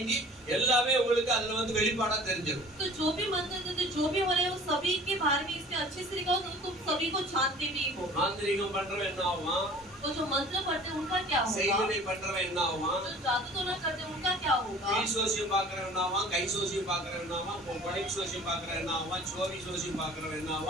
எல்லாமே உங்களுக்கு அதுல வெளிப்பாடா தெரிஞ்சிடும். तो जो भी मंत्र देते जो भी हो रहे हैं वो सभी के बारे में इसमें अच्छे से लिखा हो तो तुम सभी को जानते भी हो. மாந்திரிகம் பண்றவன் என்ன ஆவான்? तो जो मंत्र पढ़ते हैं उनका क्या होगा? செய்கனை பண்றவன் என்ன ஆவான்? जो जादू टोना करते हैं उनका क्या होगा? கை சோசியம் பாக்குறவன் என்ன ஆவான்? கை சோசியம் பாக்குறவன் என்ன ஆவான்? கொடை சோசியம் பாக்குறவன் என்ன ஆவான்? சோரி சோசியம் பாக்குறவன் என்ன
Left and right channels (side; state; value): both; normal; correlation 0.46